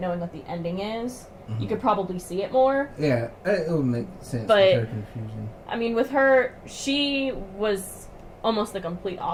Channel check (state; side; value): identical; both; correlation 1.00